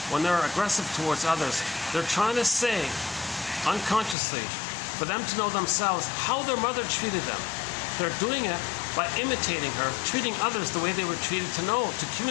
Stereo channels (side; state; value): right; drops out; at 4.2 s